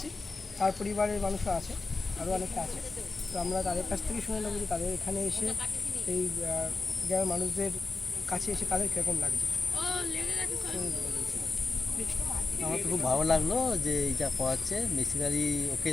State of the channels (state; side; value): quieter; right; 3.8 dB